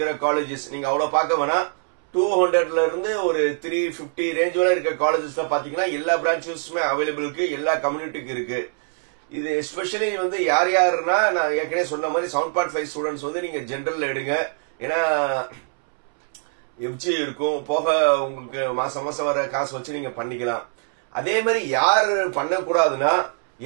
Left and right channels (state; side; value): silent; left; 63 dB below the other